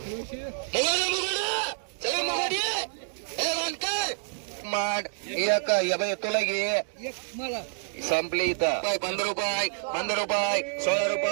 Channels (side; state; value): left; silent; digital silence